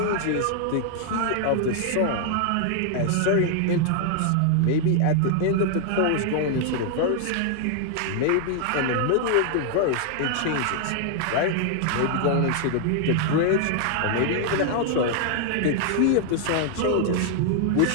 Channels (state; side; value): different; both; correlation 0.00